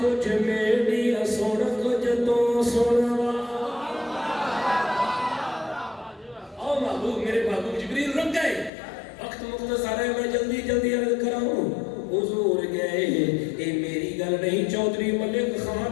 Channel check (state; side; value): drops out; right; at 8.7 s